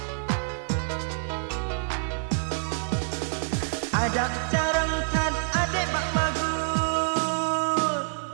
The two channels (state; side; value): silent; left; 60 dB below the other